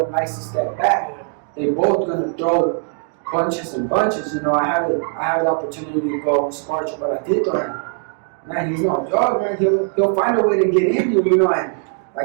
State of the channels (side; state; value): left; silent; 56 dB below the other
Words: likes to step back. Yeah. They both going to throw punches and bunches. You know, I had the opportunity to go spar Chocolatito, and man, he's no joke, man. He'll find a way to get in you know, and